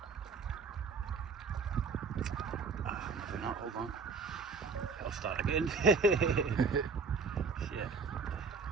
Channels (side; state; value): left; quieter; 4.8 dB